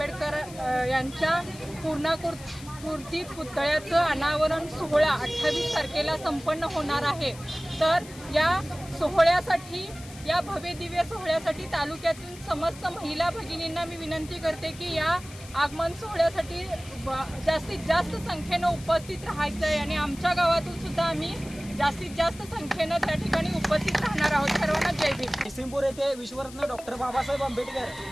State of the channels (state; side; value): noise; left; hiss, 18 dB below the sound